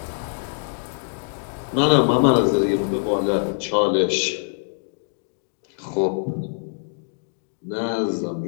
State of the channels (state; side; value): silent; right; digital silence